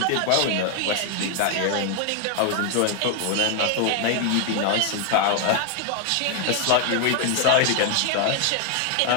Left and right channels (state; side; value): different; both; correlation 0.00